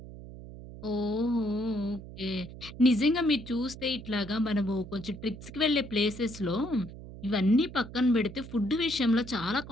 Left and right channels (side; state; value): right; noise; hum, 14 dB below the sound